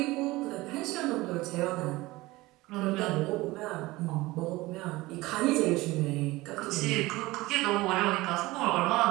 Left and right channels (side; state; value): left; quieter; 20.0 dB